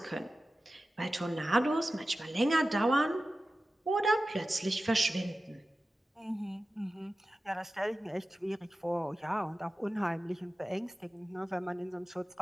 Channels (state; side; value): normal; both; correlation 0.94